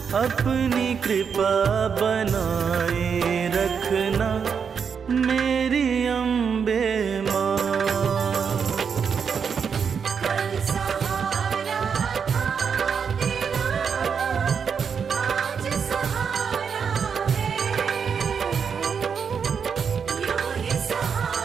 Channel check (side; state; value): left; quieter; 6.6 dB